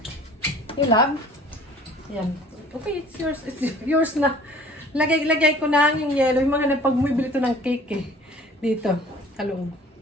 ilab. Yan. Okay, it's yours. It's yours na. Lagay ko na yung yellow. Yung mga nagpag-bumibili ito ng cake eh. Dito. Talong.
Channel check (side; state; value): both; normal; correlation 0.50